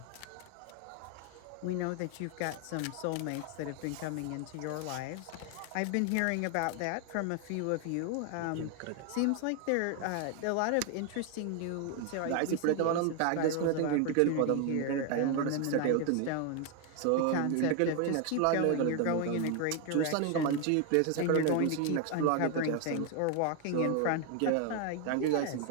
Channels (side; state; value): both; different; correlation 0.01